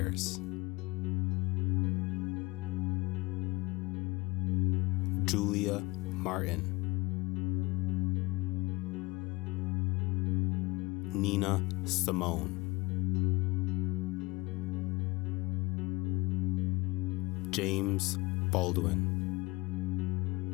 Julia Martin, Nina Simone, James Baldwin,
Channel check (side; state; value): right; quieter; 23.0 dB